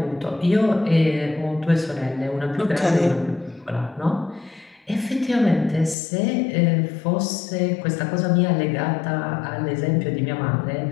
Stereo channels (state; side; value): drops out; right; at 6.0 s